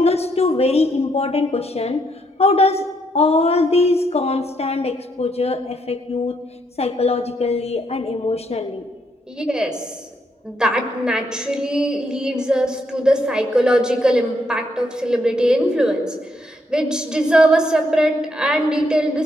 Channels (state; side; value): normal; both; correlation 0.75